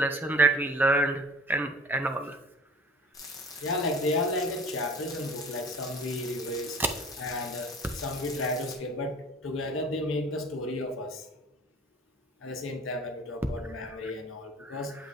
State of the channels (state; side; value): normal; both; correlation 0.45